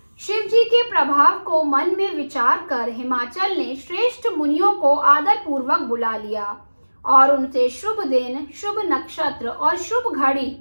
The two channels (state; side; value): inverted; both; correlation -1.00